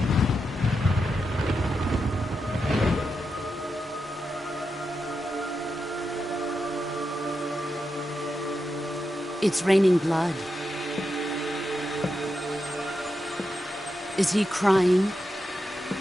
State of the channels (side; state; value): both; normal; correlation 0.87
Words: It's raining blood. Is he crying?